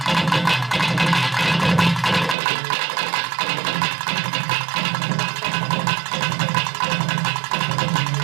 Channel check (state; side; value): drops out; left; at 2.4 s